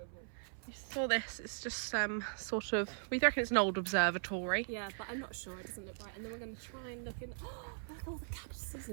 We saw this. It's just sort of. We reckon it's an old observatory. Yeah, but I'm not sure. It doesn't look right. And then we're going to try and look in. Oh, look at all the cactuses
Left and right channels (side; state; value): left; silent; 52 dB below the other